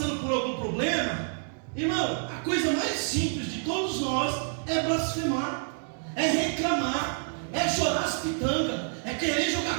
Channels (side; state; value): left; silent; 59 dB below the other